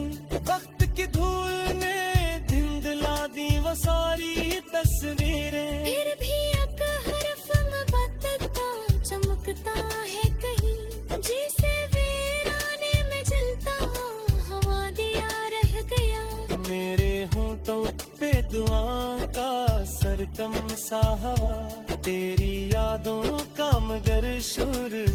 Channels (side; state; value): both; identical; correlation 1.00